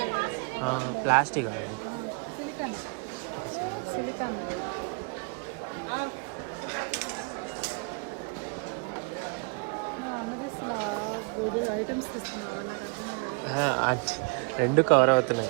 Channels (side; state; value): left; quieter; 34.7 dB